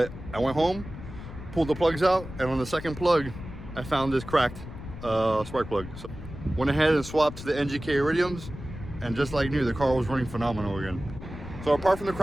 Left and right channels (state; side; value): noise; left; rumble, 12 dB below the sound